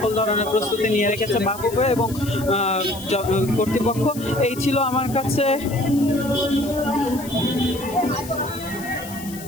ধরনের প্রস্তুতি নিয়ে রেখেছে বাফুফে এবং কর্তৃপক্ষ। এই ছিল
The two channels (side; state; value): left; noise; hiss, 15 dB below the sound